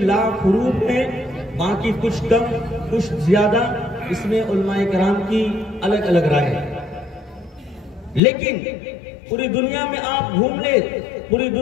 لاکھ حروف ہیں، باقی کچھ کم کچھ زیادہ، اس میں علماء کرام کی الگ الگ رائے ہے۔ لیکن پوری دنیا میں آپ گھوم لیں، پوری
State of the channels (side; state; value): right; drops out; at 8.2 s